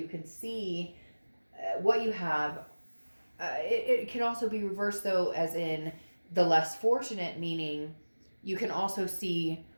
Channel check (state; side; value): inverted; both; correlation -1.00